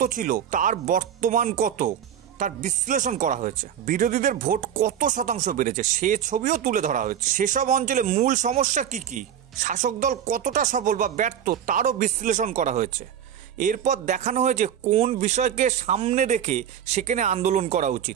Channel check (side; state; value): left; quieter; 9.4 dB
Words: ছিল, তার বর্তমান কত, তার বিশ্লেষণ করা হয়েছে। বিরোধীদের ভোট কত শতাংশ বেড়েছে সে ছবিও তুলে ধরা হয়েছে। সেসব অঞ্চলে মূল সমস্যা কি কি, শাসক দল কতটা সফল বা ব্যর্থ তারও বিশ্লেষণ করা হয়েছে। এরপর দেখানো হয়েছে কোন বিষয়কে সামনে রেখে সেখানে আন্দোলন করা